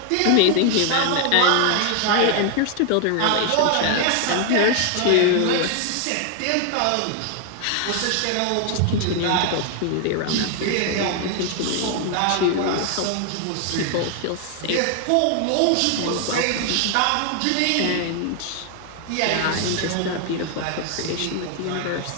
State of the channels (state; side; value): different; both; correlation 0.00